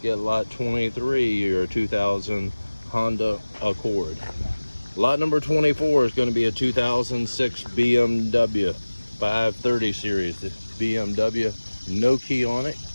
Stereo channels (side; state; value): both; inverted; correlation -1.00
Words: at lot 23, your 2000 Honda Accord. Lot number 24 is going to be a 2006 BMW 530 series. The BMW, no key on it.